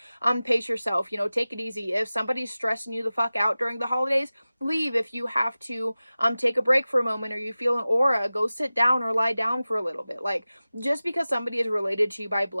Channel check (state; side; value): inverted; both; correlation -0.96